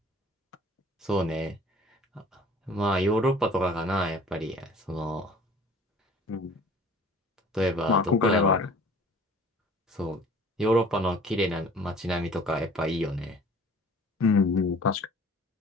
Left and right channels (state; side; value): normal; both; correlation 0.49